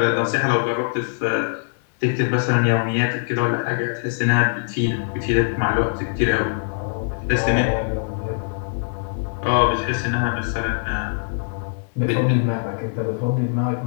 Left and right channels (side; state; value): right; silent; digital silence